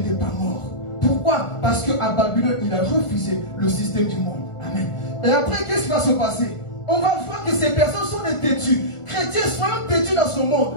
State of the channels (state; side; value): late; right; 1.4 ms